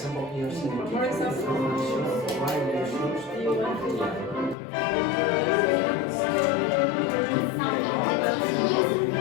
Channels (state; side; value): drops out; right; at 4.5 s